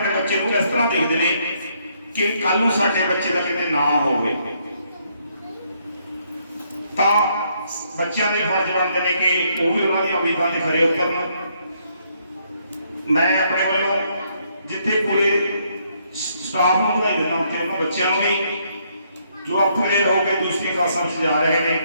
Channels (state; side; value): inverted; both; correlation -0.72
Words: ਬੱਚੇ ਨੂੰ ਇਸ ਤਰ੍ਹਾਂ ਦੇਖਦੇ ਨੇ ਕਿ ਕੱਲ ਨੂੰ ਸਾਡੇ ਬੱਚੇ ਦਾ ਕਿਤੇ ਨਾ ਹੋਵੇ। ਤਾਂ ਬੱਚਿਆਂ ਦੇ ਫਰਜ਼ ਬਣਦੇ ਨੇ ਕਿ ਉਹ ਵੀ ਉਹਨਾਂ ਦੀਆਂ ਉਮੀਦਾਂ ਤੇ ਖਰੇ ਉਤਰਨ। ਮੈਂ ਆਪਣੇ ਵੱਲੋਂ ਜਿੱਥੇ ਪੂਰੇ ਸਟਾਫ ਨੂੰ ਵਧਾਈ ਦਿੰਦਾ ਕਿ ਉਹਨਾਂ ਬੱਚਿਆਂ ਨੂੰ ਵੀ ਜੋ ਅਪਗ੍ਰੇਡ ਹੋ ਕੇ ਦੂਸਰੀ ਕਲਾਸਾਂ ਵਿੱਚ ਜਾ ਰਹੇ ਨੇ,